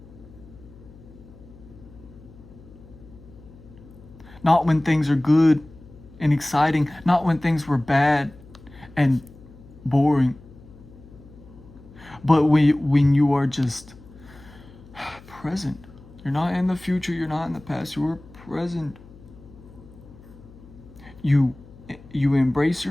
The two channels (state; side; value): noise; left; hum, 21 dB below the sound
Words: Not when things are good and exciting. Not when things were bad and boring. But when you are just present. You're not in the future. You're not in the past. You are present. You embrace